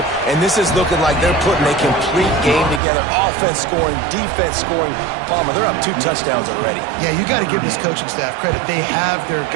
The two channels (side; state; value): left; drops out; at 2.8 s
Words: and this is looking like they're putting a complete game together. Offense scoring, defense scoring. Palmer, they're up 2 touchdowns already. Yeah, you got to give this coaching staff credit. They have their